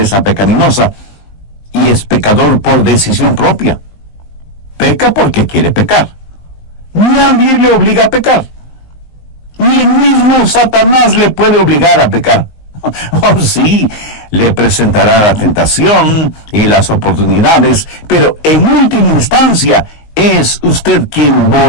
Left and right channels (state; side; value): late; right; 19 ms